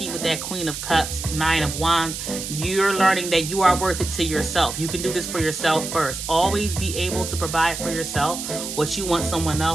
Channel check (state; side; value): noise; right; hiss, 7 dB below the sound